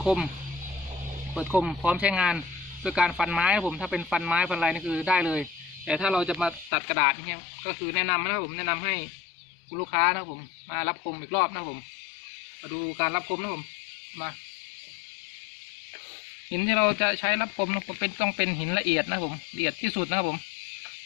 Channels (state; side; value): drops out; right; at 6.7 s